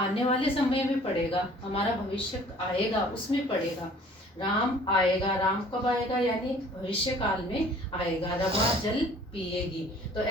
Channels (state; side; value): normal; both; correlation 0.52